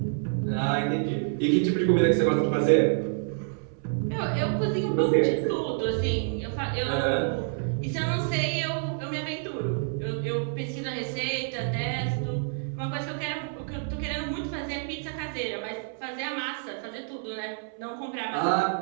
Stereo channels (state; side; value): silent; left; 59 dB below the other